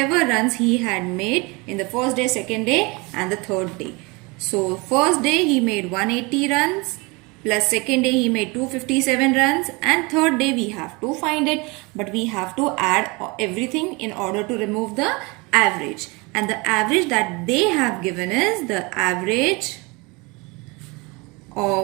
runs he had made in the first day, second day and the third day. So first day he made 180 runs, plus second day he made 257 runs, and third day we have to find it, but we have to add everything in order to remove the average. And the average that they have given is the average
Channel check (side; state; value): left; quieter; 26.8 dB